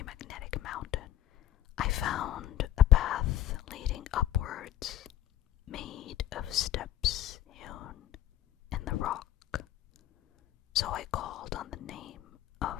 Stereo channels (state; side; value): quieter; right; 13.1 dB